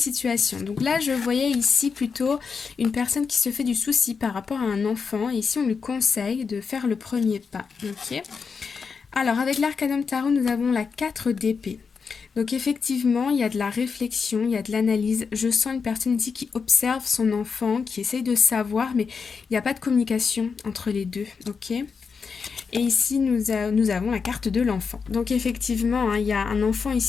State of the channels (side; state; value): right; quieter; 5.5 dB